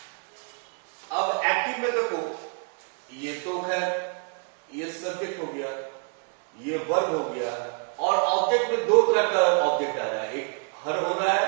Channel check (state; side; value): quieter; left; 39.5 dB